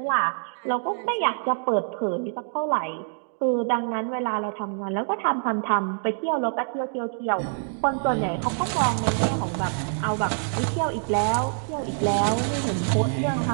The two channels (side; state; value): left; silent; digital silence